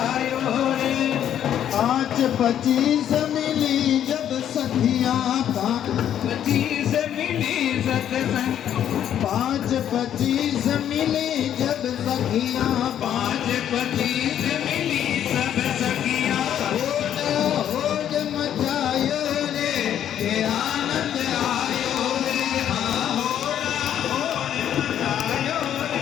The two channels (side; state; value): right; quieter; 10.2 dB